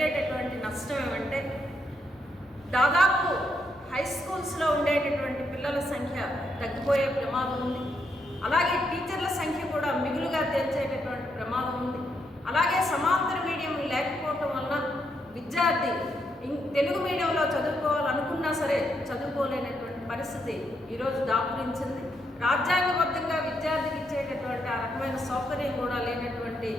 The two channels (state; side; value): noise; left; hum, 30 dB below the sound